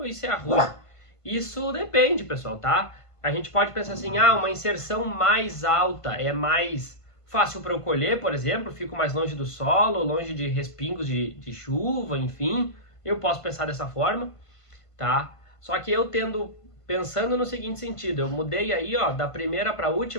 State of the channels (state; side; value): late; right; 1.5 ms